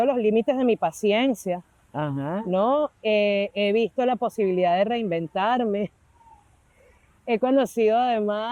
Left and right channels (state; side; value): identical; both; correlation 1.00